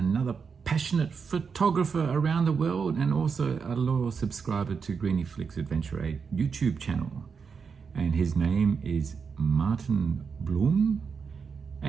passionate photographer around the world and also a loyal subscriber to Griniflix Adventure 8 YouTube channel. And his name is Martin Bluhm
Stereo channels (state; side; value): quieter; left; 5.8 dB